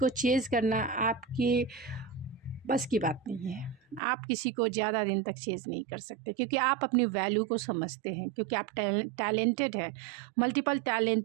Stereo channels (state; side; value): drops out; left; at 4.0 s